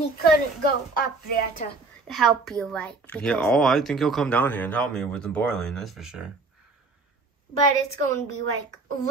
he couldn't go up there to help you, right? Yeah. Oh, I think he'll come down here and help me with the boiling. That's for sure. But it's going to be like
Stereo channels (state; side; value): quieter; left; 3.6 dB